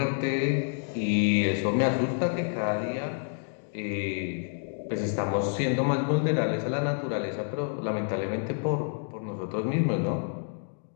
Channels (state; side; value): silent; right; 59 dB below the other